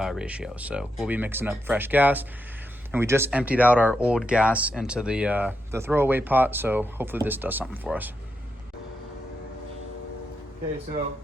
ratio. So we'll be mixing up fresh gas. And we just emptied out our old gas into the throwaway pot. So hopefully this does something for us. Okay, so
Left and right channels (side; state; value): both; normal; correlation 0.84